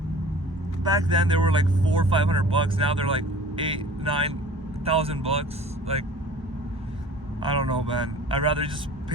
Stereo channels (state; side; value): normal; both; correlation 0.45